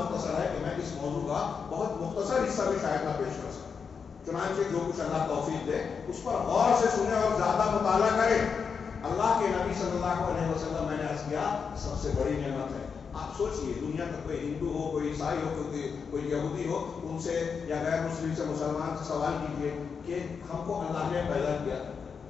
ہے کہ میں اس موضوع کا بہت مختصر حصہ بھی شاید نہ پیش کر سکوں. چنانچہ جو کچھ اللہ توفیق دے اس پر غور سے سنیں اور زیادہ مطالعہ کریں. اللہ کے نبی صلی اللہ علیہ وسلم، میں نے عرض کیا، سب سے بڑی نعمت ہے. آپ سوچئے دنیا کا کوئی ہندو ہو، کوئی عیسائی ہو، کوئی یہودی ہو، ان سے یا غیر مسلم سے، مسلمان سے سوال کیجئے کہ ہم کو اللہ نے پیدا کیا،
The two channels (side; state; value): right; quieter; 6.0 dB